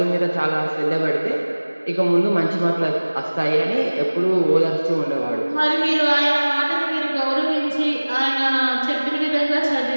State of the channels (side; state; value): both; inverted; correlation -1.00